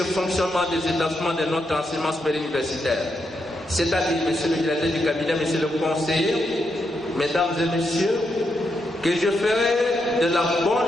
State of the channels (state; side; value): normal; both; correlation 0.82